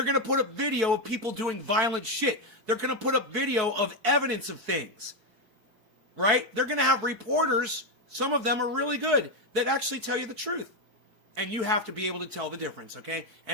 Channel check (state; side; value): late; left; 4.6 ms